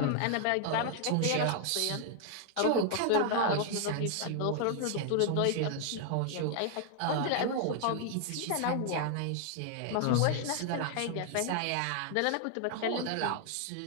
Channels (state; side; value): different; both; correlation 0.00